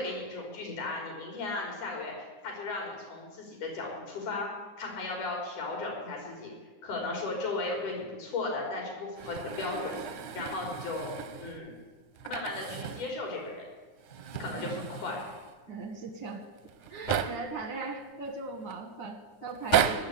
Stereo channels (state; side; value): late; right; 9.7 ms